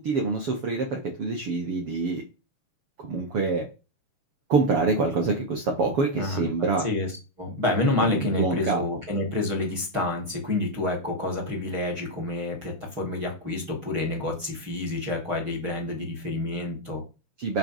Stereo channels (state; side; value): late; left; 6.3 ms